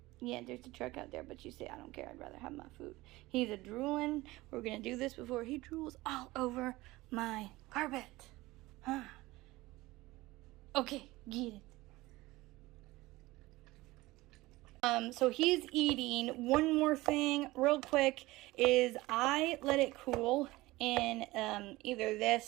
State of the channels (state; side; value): quieter; left; 19.5 dB